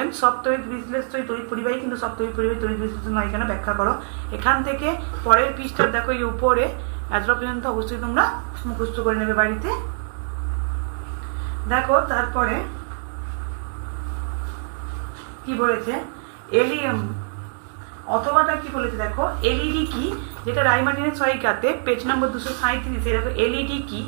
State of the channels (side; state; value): left; silent; digital silence